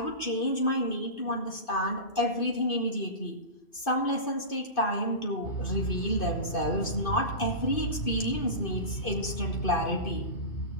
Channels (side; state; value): right; late; 2.5 ms